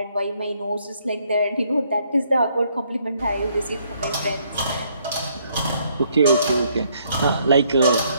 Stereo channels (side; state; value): both; inverted; correlation -0.69